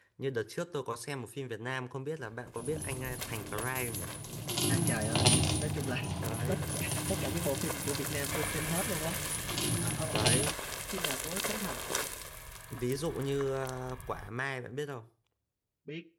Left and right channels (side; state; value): both; identical; correlation 1.00